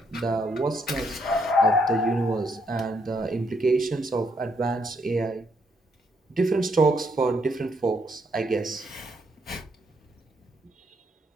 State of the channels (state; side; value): normal; both; correlation 0.74